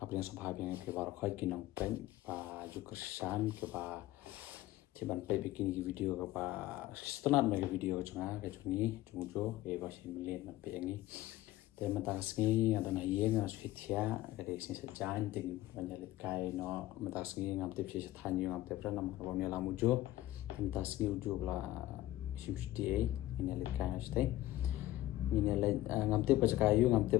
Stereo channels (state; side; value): quieter; right; 15.8 dB